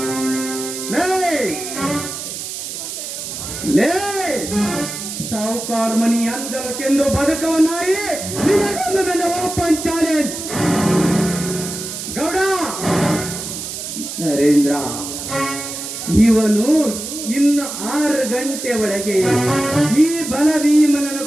ಲೇ ಸಾವುಕಾರ ಮನಿ ಅಂಜಲಕ್ಕೆಂದು ಬದುಕುವ ನಾಯಿ, ನಿನಗೊಂದು ನನ್ನ ಓಪನ್ ಚಾಲೆಂಜ್. ಗೌಡ ನರೇಂದ್ರ, ಇವನು ಇನ್ನು 6 ಗಂಟೆ ಒಳಗೆ ಈ ಬಲಭೀಮನನ್ನು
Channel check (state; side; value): noise; right; hiss, 7 dB below the sound